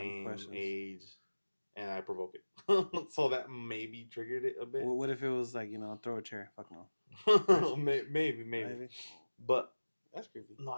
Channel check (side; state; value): both; inverted; correlation -1.00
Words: questions. Age, and I provoke it. So that maybe triggered it a bit. What if it was like throw a chair? Fuck no. maybe. But that's creepy. No,